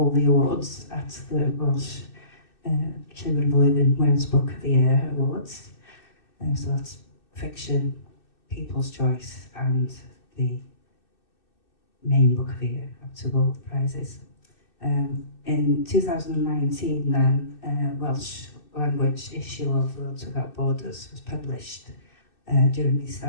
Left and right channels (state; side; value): late; right; 2.6 ms